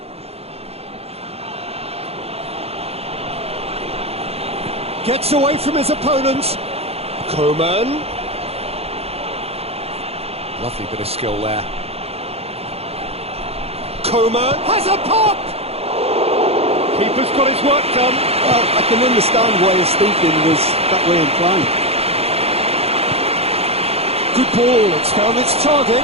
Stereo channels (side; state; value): left; late; 0.29 ms